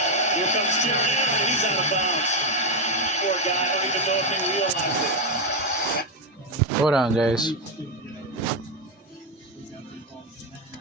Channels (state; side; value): normal; both; correlation 0.06